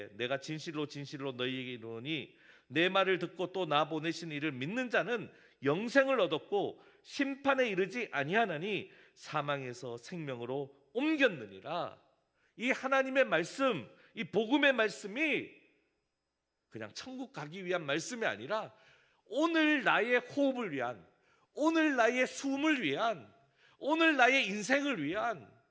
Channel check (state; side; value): identical; both; correlation 1.00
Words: 내가 진실로 진실로 너희에게 이르노니 내 말을 듣고 또 나 보내신 이를 믿는 자는 영생을 얻었고 심판에 이르지 아니하나니 사망에서 생명으로 옮겼느니라. 이 하나님의 말씀, 이 복음의 말씀이 그냥 천국 가기 위한 말씀이 아니라 오늘 나의 호흡을 위한, 오늘 나의 숨을 위한, 오늘 나의 인생을 위한,